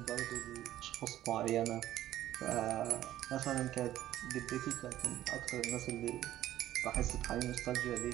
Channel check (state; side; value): quieter; left; 13.4 dB